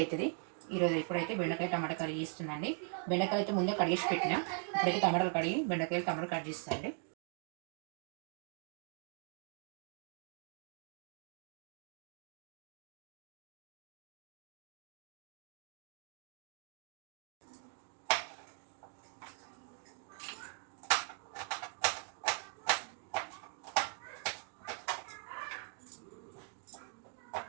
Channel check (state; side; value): silent; left; 50 dB below the other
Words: అవుతుంది. ఈరోజు ఇప్పుడైతే బెండకాయ టమాటా కర్రీ చేస్తున్నాండి. బెండకాయలు అయితే ముందే కడిగేసి పెట్టిన. ఇప్పుడైతే టమాటాలు కడిగి బెండకాయలు టమాటా కట్ చేస్తానండి.